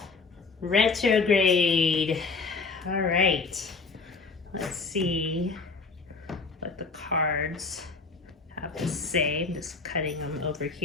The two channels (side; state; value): right; quieter; 4.4 dB